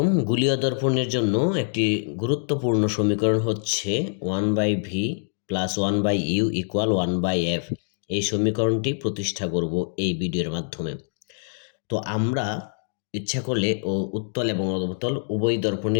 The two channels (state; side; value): silent; right; digital silence